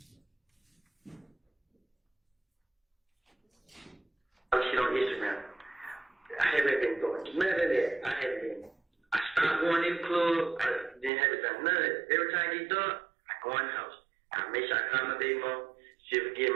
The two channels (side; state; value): left; drops out; at 11.1 s